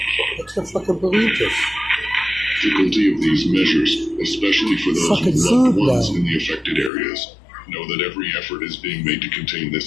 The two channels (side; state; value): right; drops out; at 6.9 s